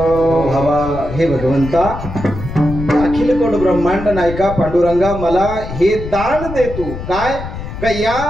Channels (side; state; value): left; noise; rumble, 9 dB below the sound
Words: हवा, हे भगवंता अखिल कोट ब्रह्मांड नायका पांडुरंगा, मला हे दान दे तू. काय का